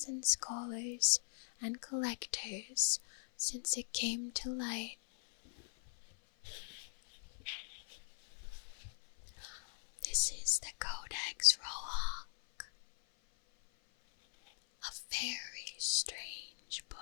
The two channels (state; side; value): silent; right; 51 dB below the other